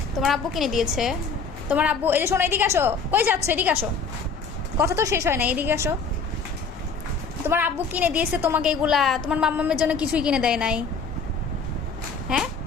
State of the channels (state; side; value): quieter; right; 4.9 dB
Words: তোমার আব্বু কিনে দিয়েছে? তোমার আব্বু, এই যে শোনো, এদিকে আসো। কই যাচ্ছ? এদিকে আসো, কথা তো শেষ হয় না, এদিকে আসো। তোমার আব্বু কিনে দিয়েছে তোমাকে এগুলা, তোমার মাম্মামের জন্য কিছুই কিনে দেয় নাই? হ্যাঁ